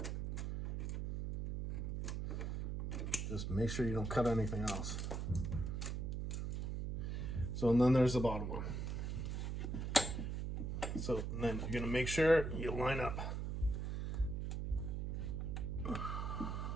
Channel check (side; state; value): right; noise; hum, 2 dB below the sound